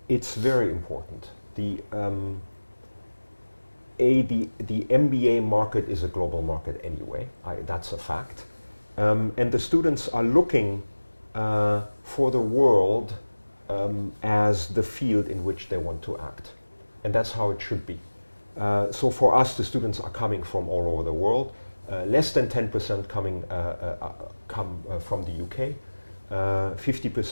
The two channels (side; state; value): both; inverted; correlation -1.00